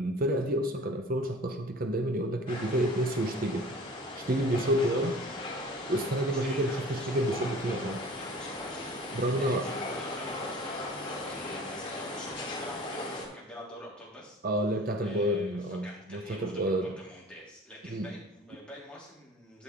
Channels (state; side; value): normal; both; correlation 0.44